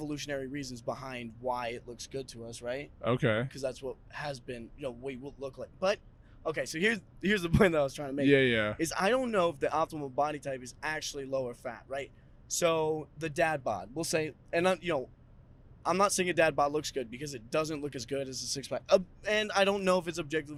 reasons behind why it looks good to us, right? Okay. Because that's what has been, we will look like. But okay, so here's the point that I was trying to make. Yeah, yeah. Is I don't know if the optimal body type is actually lower fat, right? So the dad bod, we'll say, and I'm not saying a dad bod looks good because it doesn't look as good as a six pack. And I don't know if it's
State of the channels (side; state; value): both; identical; correlation 1.00